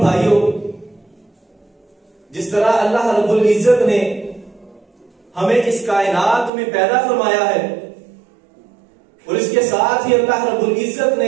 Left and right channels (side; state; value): left; drops out; at 6.5 s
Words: بھائیوں، جس طرح اللہ رب العزت نے ہمیں اس کائنات میں پیدا فرمایا ہے اور اس کے ساتھ ہی اللہ رب العزت